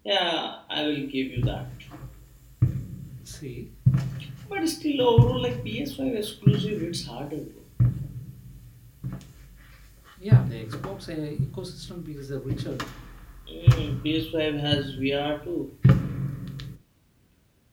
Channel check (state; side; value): identical; both; correlation 1.00